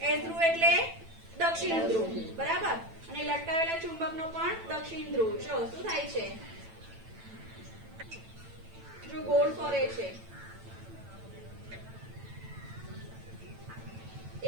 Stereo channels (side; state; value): left; late; 9.0 ms